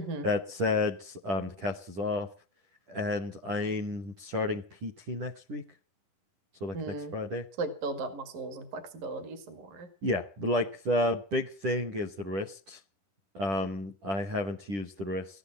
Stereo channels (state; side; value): late; left; 10 ms